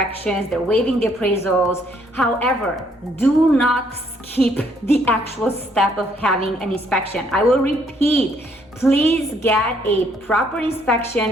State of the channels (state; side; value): normal; both; correlation 0.68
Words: they're waiving the appraisals. However, do not skip the actual step of having an inspection. I will repeat, please get a proper inspection,